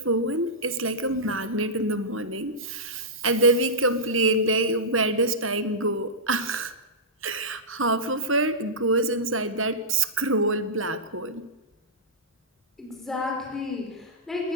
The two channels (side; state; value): both; normal; correlation -0.14